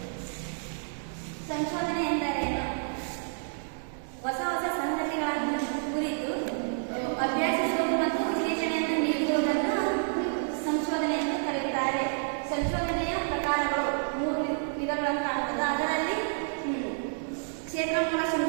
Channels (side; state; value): left; silent; digital silence